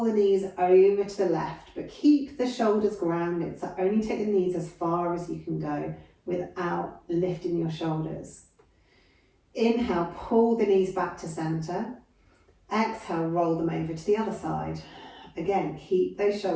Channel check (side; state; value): both; identical; correlation 1.00